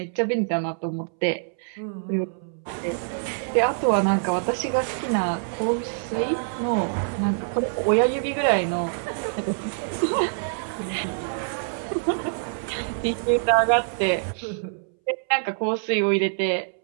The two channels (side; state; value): left; silent; 62 dB below the other